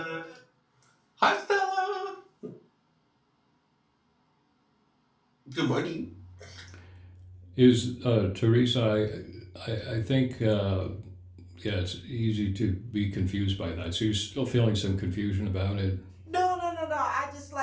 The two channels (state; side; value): identical; both; correlation 1.00